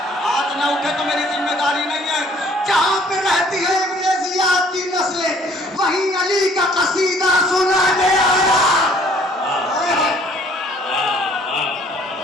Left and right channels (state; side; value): normal; both; correlation 0.58